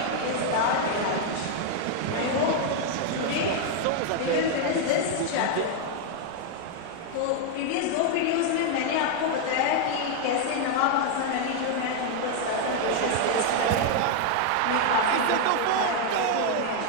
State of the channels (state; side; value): different; both; correlation 0.00